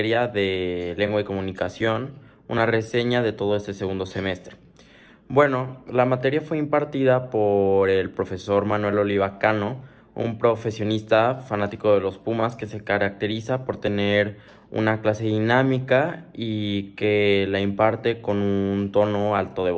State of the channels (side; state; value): both; identical; correlation 1.00